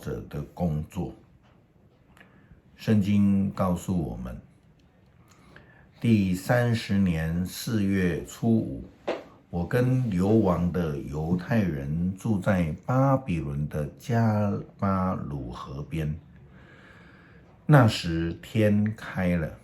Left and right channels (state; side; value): identical; both; correlation 1.00